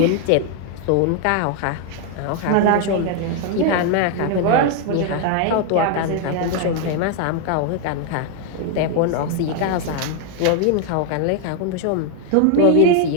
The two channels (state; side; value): different; both; correlation 0.01